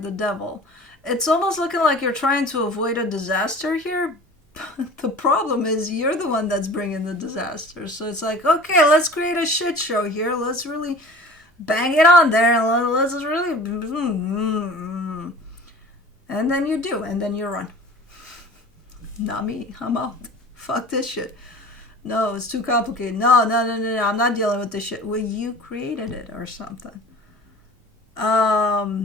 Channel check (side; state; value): both; normal; correlation 0.42